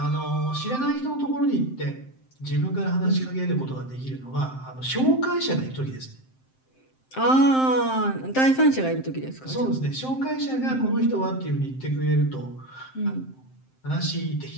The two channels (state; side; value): late; right; 7.7 ms